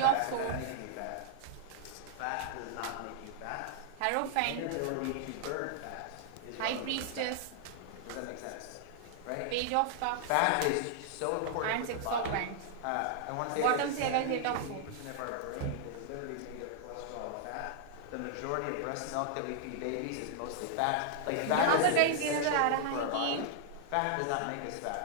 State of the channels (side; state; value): both; different; correlation -0.01